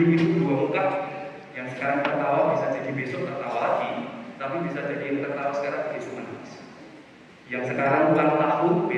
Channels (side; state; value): both; identical; correlation 1.00